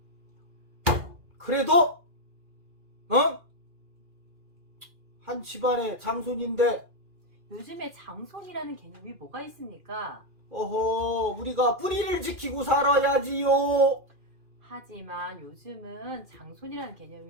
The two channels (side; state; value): left; late; 2.4 ms